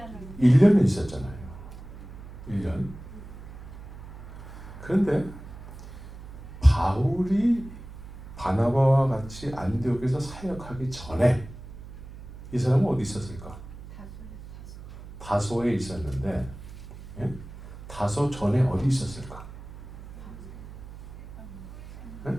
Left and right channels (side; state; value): right; noise; hum, 14 dB below the sound